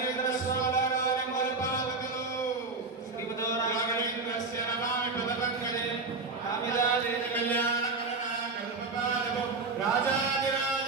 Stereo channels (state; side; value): quieter; left; 3.9 dB